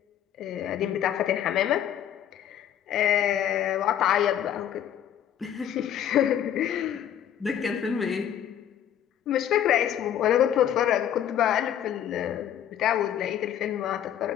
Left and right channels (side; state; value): right; quieter; 10.2 dB